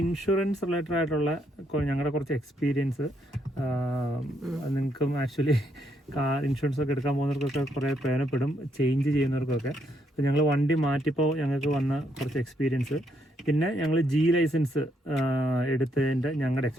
ഇൻഷുറൻസ് റിലേറ്റഡ് ആയിട്ടുള്ള ഞങ്ങളുടെ കുറച്ച് എക്സ്പീരിയൻസ്. നിങ്ങൾക്കും ആക്ച്വലി കാർ ഇൻഷുറൻസ് ഒക്കെ എടുക്കാൻ പോകുന്നവർക്കൊക്കെ കുറേ പ്രയോജനപ്പെടും, ചേഞ്ച് ചെയ്യുന്നവർക്കൊക്കെ. അപ്പോൾ ഞങ്ങൾ വണ്ടി മാറ്റിയപ്പോൾ ഞങ്ങൾക്ക് വന്ന കുറച്ച് എക്സ്പീരിയൻസ്, പിന്നെ ഞങ്ങൾ ജി ലൈസൻസ് എടുത്തതിൻ്റെ ഞങ്ങളുടെ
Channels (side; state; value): both; normal; correlation 0.74